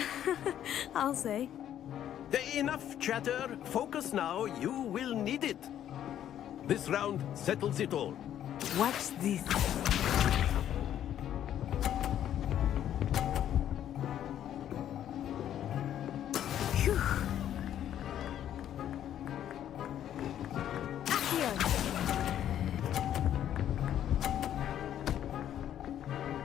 I'll say. Enough chatter. Focus now. You will need it. This round settles it all. Watch this. Phew. Accio!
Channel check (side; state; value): right; quieter; 10.8 dB